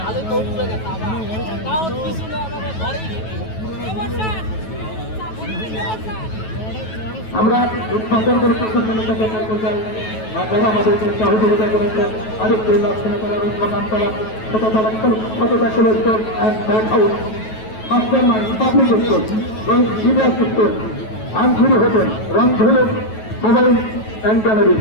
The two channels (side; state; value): right; late; 9.2 ms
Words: আমরা উৎপাদন করে করতে চাই যারা আমাদেরকে সহযোগিতা করেছেন আরেকটি লক্ষ্মণতলা রুদ্রকান্তলা শততা college and back house master mind public school এবং সিনিয়র স্কুল আনফুরি হোটেল রংধনু mobile and gallery